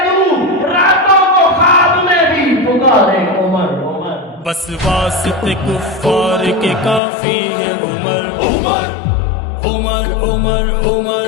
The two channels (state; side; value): drops out; right; at 7.0 s